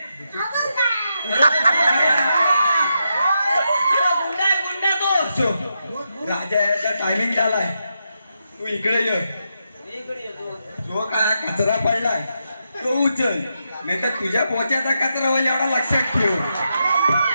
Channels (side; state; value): both; inverted; correlation -0.84